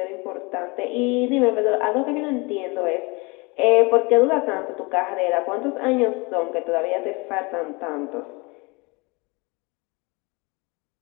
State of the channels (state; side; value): quieter; right; 27.4 dB